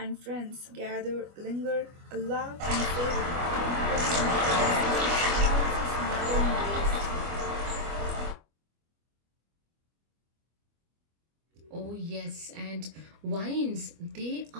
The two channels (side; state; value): left; late; 25 ms